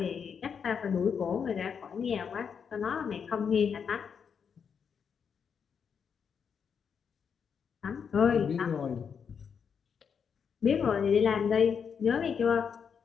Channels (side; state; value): right; quieter; 6.8 dB